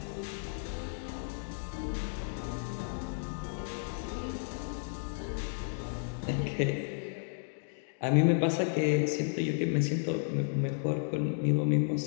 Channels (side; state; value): right; silent; digital silence